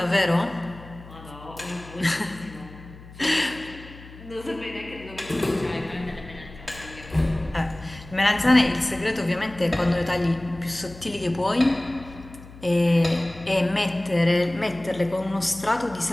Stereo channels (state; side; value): noise; left; hum, 18 dB below the sound